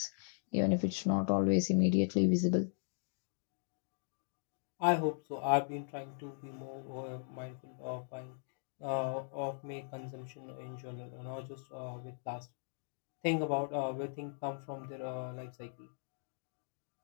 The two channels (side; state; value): right; silent; digital silence